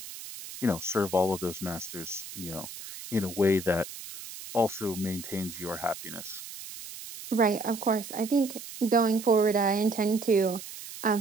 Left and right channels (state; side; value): noise; right; hiss, 12 dB below the sound